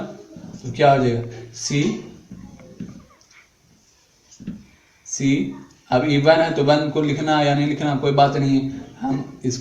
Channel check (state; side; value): identical; both; correlation 1.00